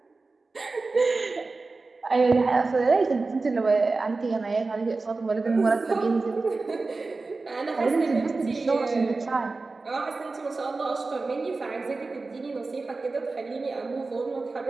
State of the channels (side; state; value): left; quieter; 3.7 dB